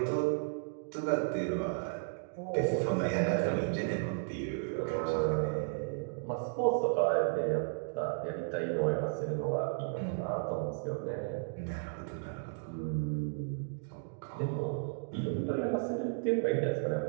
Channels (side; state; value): left; silent; digital silence